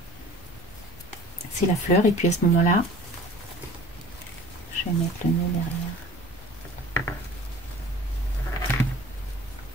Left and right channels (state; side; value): normal; both; correlation 0.44